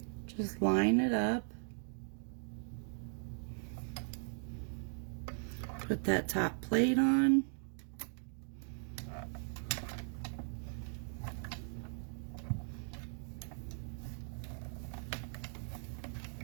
Just line it up. Put that top plate on.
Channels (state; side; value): silent; left; 52 dB below the other